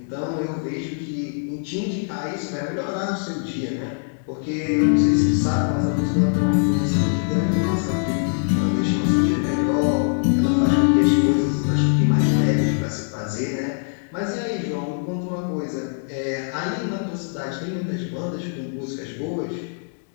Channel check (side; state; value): right; silent; digital silence